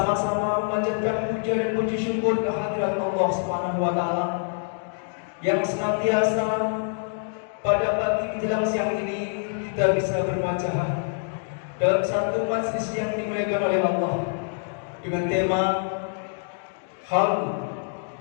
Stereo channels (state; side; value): silent; right; digital silence